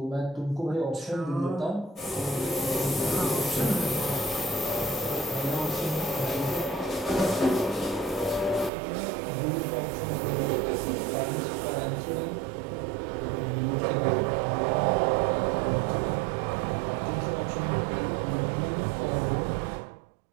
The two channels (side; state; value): left; drops out; at 8.7 s